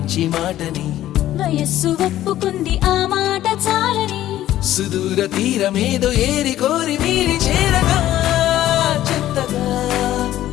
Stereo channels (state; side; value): quieter; right; 13.4 dB